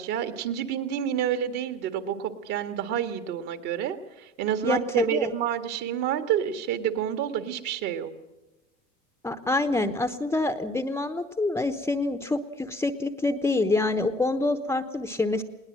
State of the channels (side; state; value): both; normal; correlation 0.43